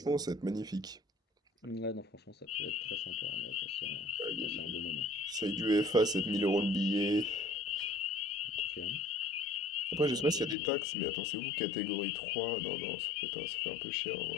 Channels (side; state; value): right; drops out; at 10.6 s